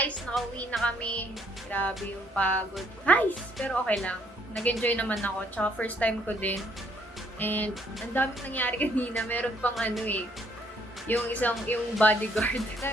nakauwi na kami. Grabe yung pagod. Guys, pero okay lang. Nag-enjoy naman ako. Tsaka first time ko din. And ang daming nangyari kanina. Meron pang yung bodyguard.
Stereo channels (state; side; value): normal; both; correlation 0.67